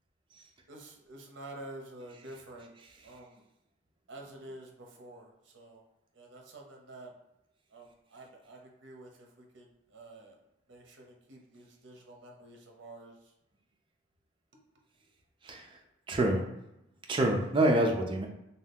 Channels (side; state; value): both; normal; correlation 0.52